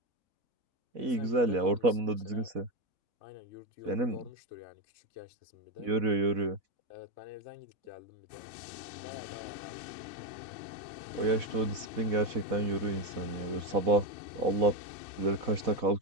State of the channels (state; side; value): late; left; 4.1 ms